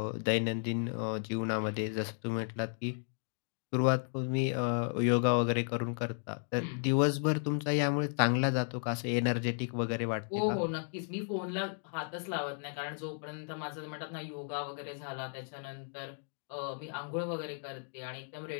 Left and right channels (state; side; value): silent; right; 55 dB below the other